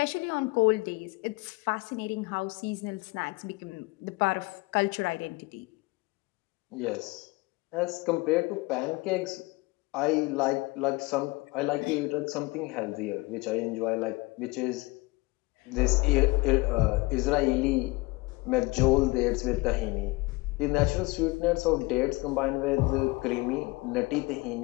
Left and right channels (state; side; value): quieter; right; 23.6 dB